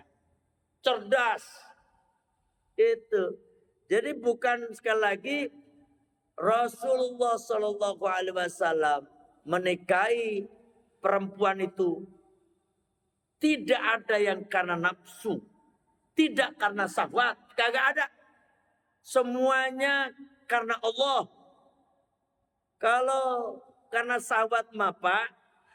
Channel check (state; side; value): identical; both; correlation 1.00